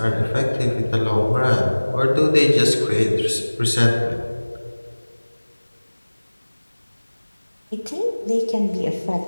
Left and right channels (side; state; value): both; inverted; correlation -1.00